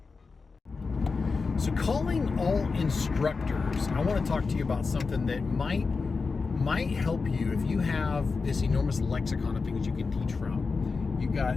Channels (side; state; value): right; quieter; 4.5 dB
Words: So calling all instructors, I want to talk to you about something that might help you if you have this enormous lexicon of things you can teach from. You've